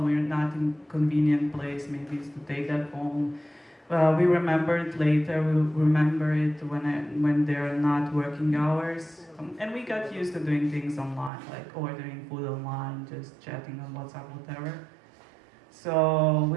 We're not in a convenient place. Maybe it's to take that phone. We remember it later. We remember it when there are not working hours. And we got used to doing things online, like ordering food online, just chatting on WhatsApp, whatever. So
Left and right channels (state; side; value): drops out; left; at 11.3 s